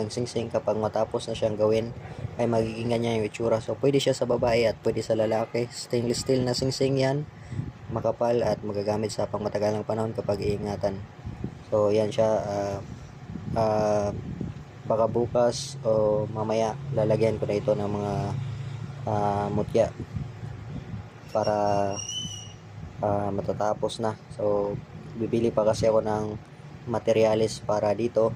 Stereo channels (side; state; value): both; identical; correlation 1.00